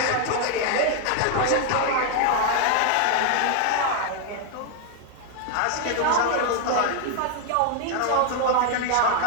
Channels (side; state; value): both; different; correlation 0.00